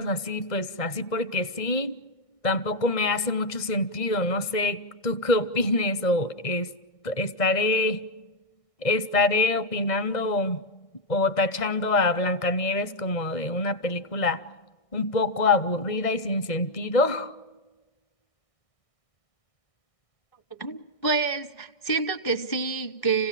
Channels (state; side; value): late; right; 1.6 ms